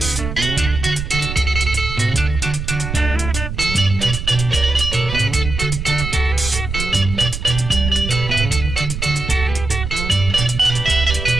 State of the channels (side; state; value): right; noise; rumble, 5 dB below the sound